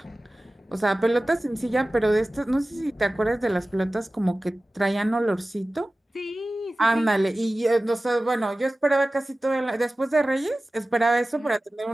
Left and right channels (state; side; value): normal; both; correlation 0.96